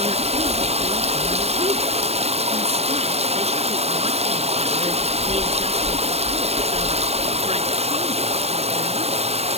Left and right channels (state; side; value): late; left; 0.30 ms